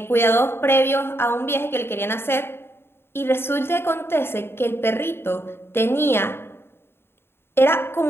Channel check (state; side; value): late; right; 0.11 ms